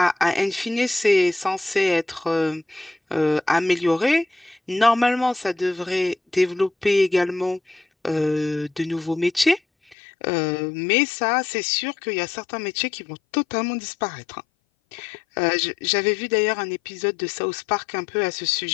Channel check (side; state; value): right; drops out; at 10.0 s